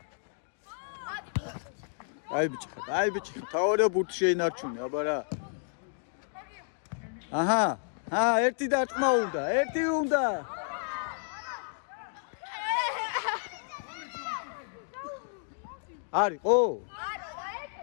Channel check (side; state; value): right; silent; digital silence